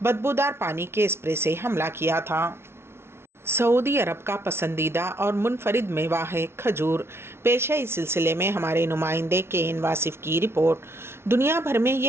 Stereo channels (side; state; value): left; late; 0.12 ms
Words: بدبودار پانی کے اسپرے سے حملہ کیا تھا۔ سعودی عرب کا پسندیدہ اور منفرد میوہ ہے کھجور۔ پیش ہے اس سلسلے میں ہمارے نمائندے کے این واصف کی رپورٹ۔ دنیا بھر میں